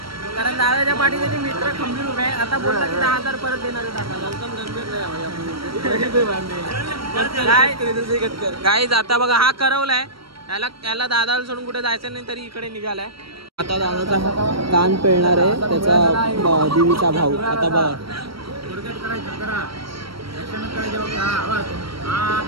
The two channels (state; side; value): late; left; 0.75 ms